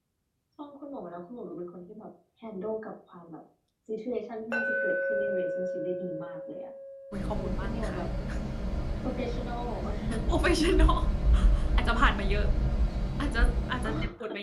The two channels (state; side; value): identical; both; correlation 1.00